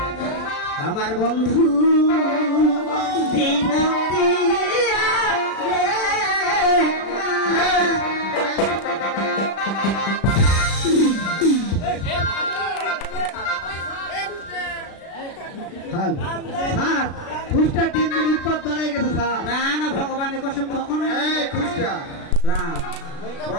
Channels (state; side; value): late; right; 36 ms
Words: আমার বন্ধু খুশটা 3 দিন উৎপাত বাড়াই গেছে স্যার। না না ভগবানের কসম কখনো খুশটা রাম